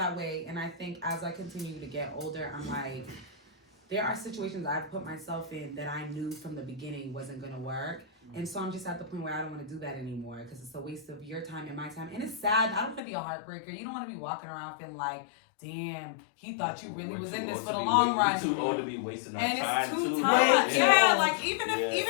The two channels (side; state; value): right; drops out; at 13.0 s